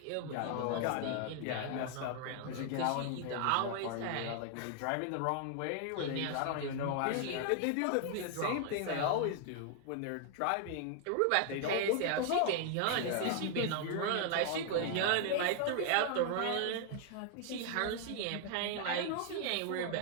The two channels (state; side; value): different; both; correlation 0.00